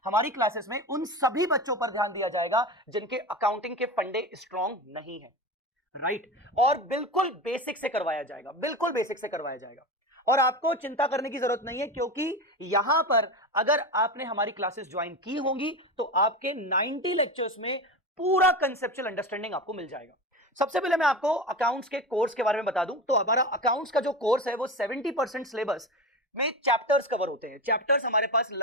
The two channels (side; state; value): both; normal; correlation 0.25